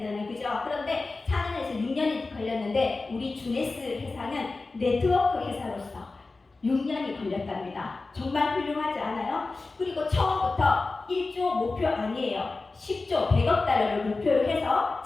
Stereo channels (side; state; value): right; quieter; 3.6 dB